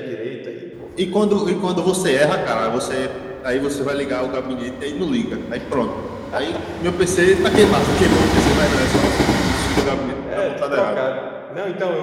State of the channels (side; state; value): both; identical; correlation 1.00